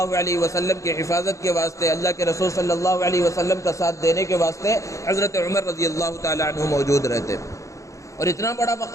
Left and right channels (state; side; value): late; right; 0.15 ms